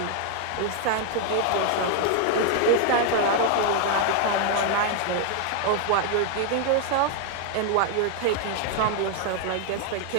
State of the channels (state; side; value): different; both; correlation 0.00